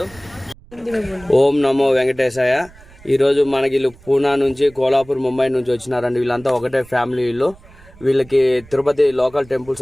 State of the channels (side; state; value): right; noise; rumble, 24 dB below the sound